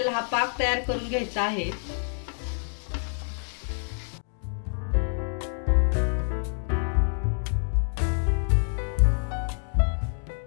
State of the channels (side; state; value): right; silent; 56 dB below the other